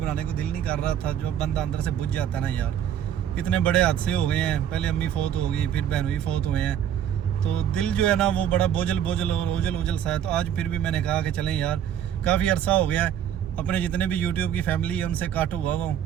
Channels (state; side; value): quieter; left; 9.9 dB